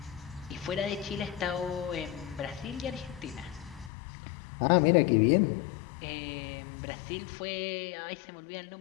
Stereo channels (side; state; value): right; drops out; at 3.9 s